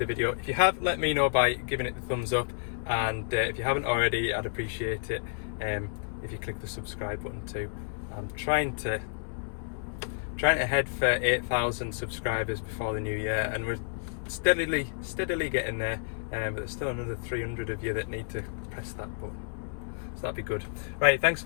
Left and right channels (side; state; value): right; silent; 57 dB below the other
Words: video. If you have, let me know by giving it the thumbs up, and if you haven't already, I'd appreciate it if you click the subscribe button too. I'm trying to head for 8,000 subscribers before the new year, and we're steadily getting there, but there's still another 300 of you that need to press that button, so that'd be good. Right, thanks